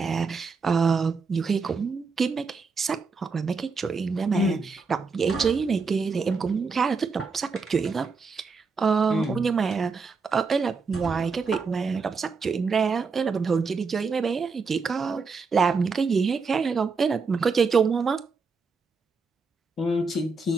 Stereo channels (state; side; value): quieter; left; 4.7 dB